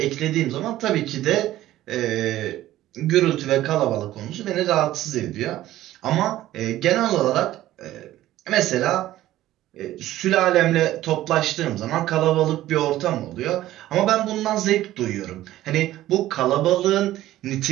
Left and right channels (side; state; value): left; quieter; 14.6 dB